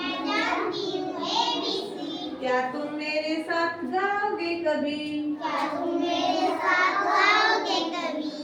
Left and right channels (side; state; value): both; identical; correlation 1.00